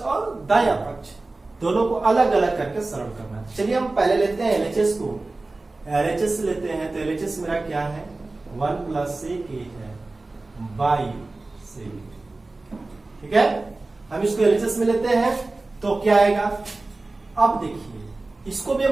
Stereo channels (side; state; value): left; quieter; 3.2 dB